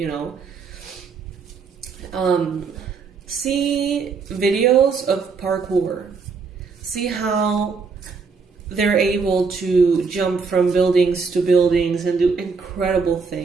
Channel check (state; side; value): quieter; left; 5.0 dB